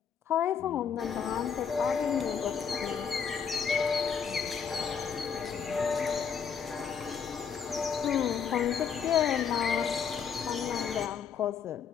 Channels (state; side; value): quieter; right; 6.9 dB